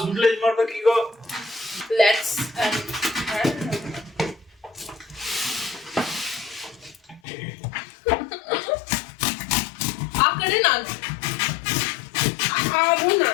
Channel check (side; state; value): right; drops out; at 7.2 s